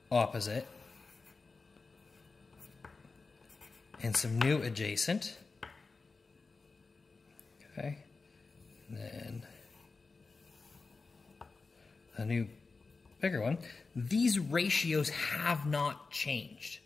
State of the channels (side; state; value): right; quieter; 4.1 dB